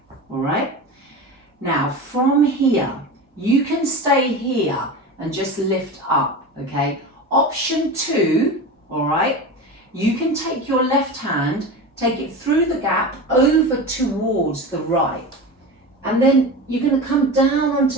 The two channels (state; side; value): normal; both; correlation 0.27